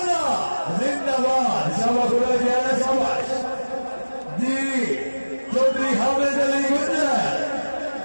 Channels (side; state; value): both; inverted; correlation -1.00